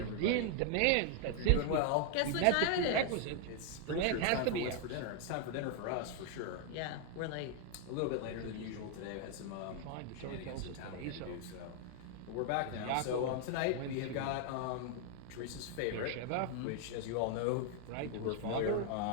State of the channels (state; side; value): different; both; correlation 0.00